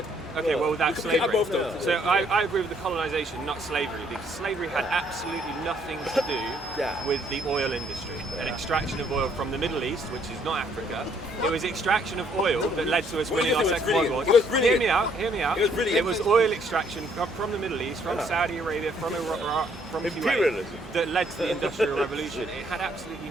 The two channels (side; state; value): both; normal; correlation 0.66